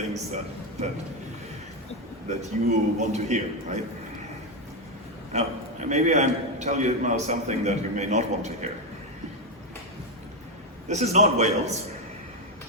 that you want to hear, right? Now, maybe I tell you now something that you may not want to hear. This is not Wales.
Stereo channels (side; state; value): both; normal; correlation 0.07